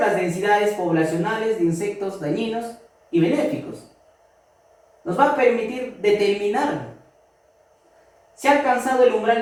densidades poblacionales de insectos dañinos y benéficos. Nos va a permitir determinar si ha alcanzado el umbral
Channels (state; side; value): identical; both; correlation 1.00